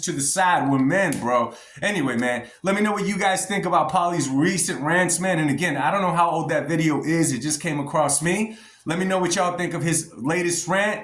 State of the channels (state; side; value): identical; both; correlation 1.00